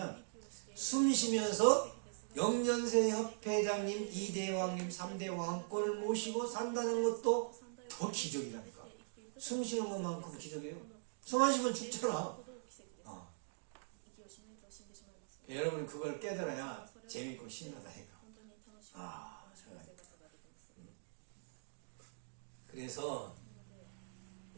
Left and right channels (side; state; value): left; silent; digital silence